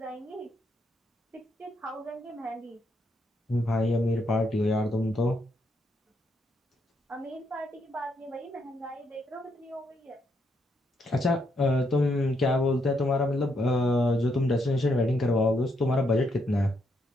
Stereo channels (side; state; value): both; normal; correlation 0.77